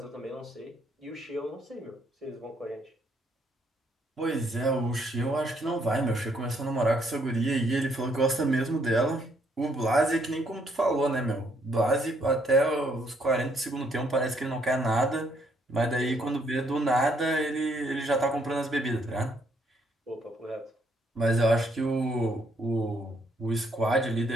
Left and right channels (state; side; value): normal; both; correlation 0.70